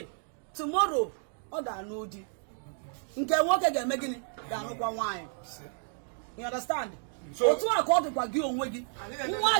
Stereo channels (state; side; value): silent; left; 56 dB below the other